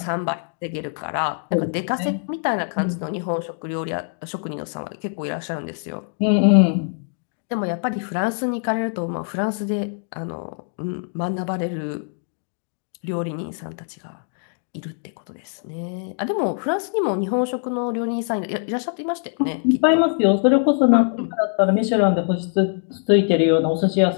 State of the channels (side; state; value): right; silent; digital silence